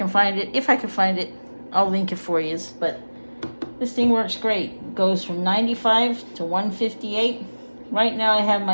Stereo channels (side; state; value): both; inverted; correlation -1.00